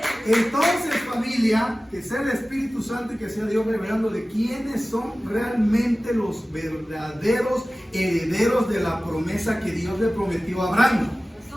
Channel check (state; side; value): normal; both; correlation 0.97